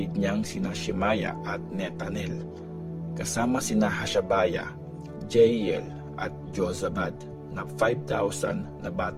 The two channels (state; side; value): identical; both; correlation 1.00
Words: niyang sina Shemaiah at Netanel, kasama sina Hashabiah, Jeiel at Jozabad na 5,000 na